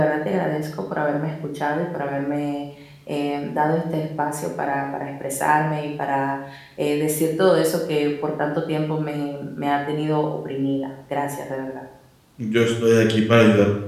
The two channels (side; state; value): both; identical; correlation 1.00